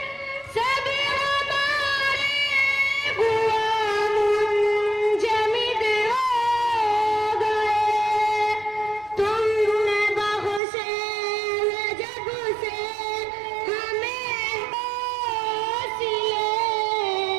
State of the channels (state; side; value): drops out; left; at 10.6 s